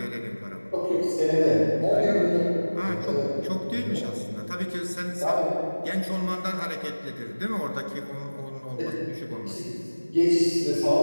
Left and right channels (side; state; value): both; inverted; correlation -1.00